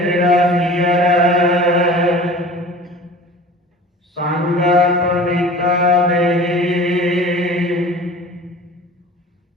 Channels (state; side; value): normal; both; correlation 0.41